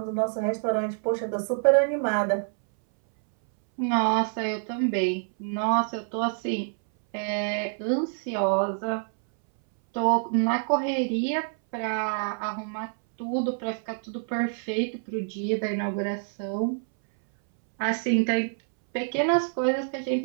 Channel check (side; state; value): left; silent; 60 dB below the other